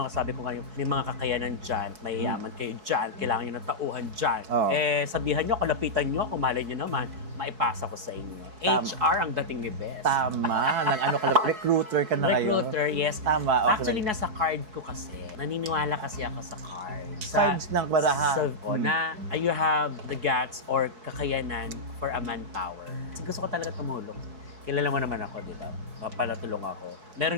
sabi ko ngayon, may mga kakayanan dyan, mayayaman kayo dyan, kailangan nyo ng tauhan dyan. Sabihan nyo, kalapitan nyo, kung malay nyo naman, maipasa ko sa inyo. HR ang dating ni Best. Tama. Recruiter ka na ngayon. Recruiter, yes. Tama, okay. Actually, nasa card ko kasi. Naniniwala kasi ako sa card. Cards ng baraha. Na you have the guts or kakayanan for a manpower. Kasi gusto ko talaga tumulong. kilala mo naman ako, di ba? Papalatulong ako. Meron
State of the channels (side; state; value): left; late; 4.6 ms